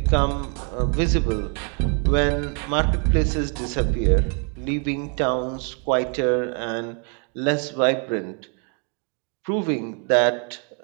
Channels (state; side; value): quieter; left; 37.7 dB